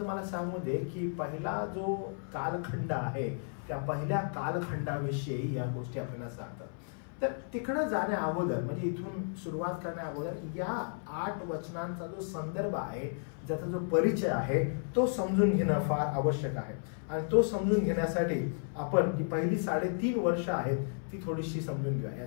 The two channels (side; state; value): right; silent; 56 dB below the other